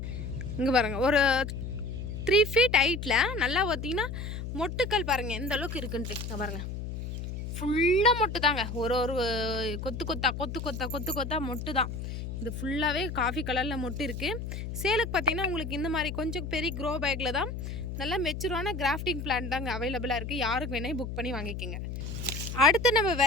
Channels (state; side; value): noise; left; hum, 6 dB below the sound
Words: இங்கே பாருங்கள், ஒரு 3 feet ஹைட்டில் நல்லா பார்த்திங்கன்னா மொட்டுக்கள் பாருங்கள் எந்த அளவுக்கு இருக்குன்ட்டு. இங்கே பாருங்கள், ஃபுல்லாக மொட்டு தாங்க. ஒரு கொத்து கொத்தா மொட்டு தான். இது ஃபுல்லாகவே காஃபி கலரில் மொட்டு இருக்குது. சேலுக்கு பார்த்திங்கன்னா உங்களுக்கு இந்த மாதிரி கொஞ்சம் பெரிய க்ரோ பேக்கில் தான் நல்லா மெச்சூரான கிராஃப்டிங் பிளான்ட் தாங்க அவைலபிளாக இருக்குது. யாருக்கு வேணால் புக் பண்ணி வாங்கிக்கோங்க. அடுத்து நம்ம